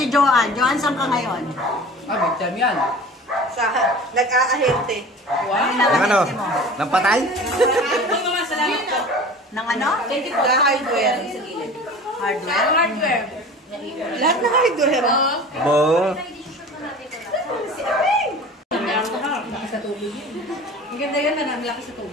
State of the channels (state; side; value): normal; both; correlation 0.39